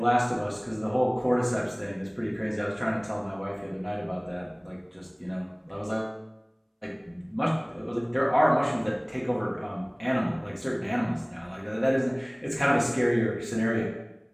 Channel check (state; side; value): identical; both; correlation 1.00